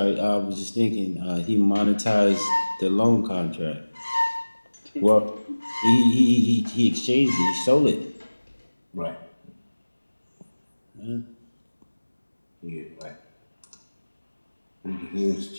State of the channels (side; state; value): both; inverted; correlation -1.00